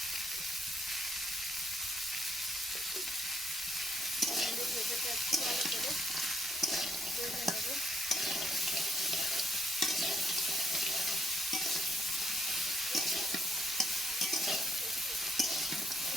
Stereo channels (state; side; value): normal; both; correlation 0.72